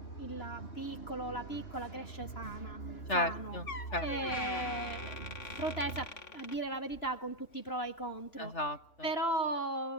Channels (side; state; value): right; late; 2.9 ms